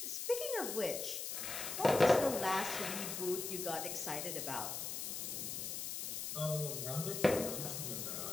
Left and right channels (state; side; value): noise; left; hiss, 4 dB below the sound